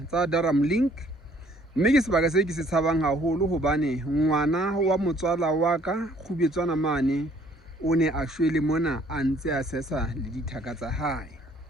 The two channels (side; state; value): both; normal; correlation 0.60